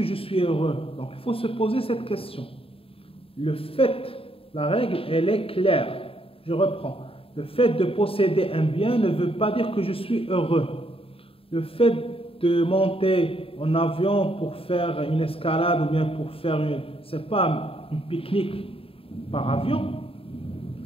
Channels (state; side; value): late; right; 0.27 ms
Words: je suis heureux? Donc, il faut se poser cette question. Le fait, la règle, elle est claire. Je reprends. Le fait de posséder un bien ne veut pas dire que je suis heureux. Le fait de monter en avion pour faire une escalade ou bien pour faire c'est pas une pique-nique par avion,